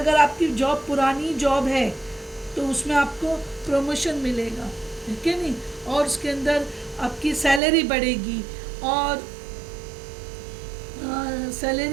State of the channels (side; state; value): left; drops out; at 7.6 s